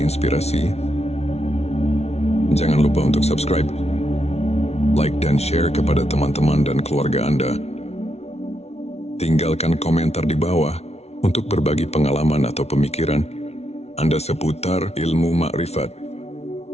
inspirasi, jangan lupa untuk subscribe like dan share kepada teman-teman dan keluarga Anda. Tinggalkan komentar di bawah untuk berbagi pengalaman atau pemikiran Anda seputar ilmu makrifat.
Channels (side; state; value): right; late; 0.31 ms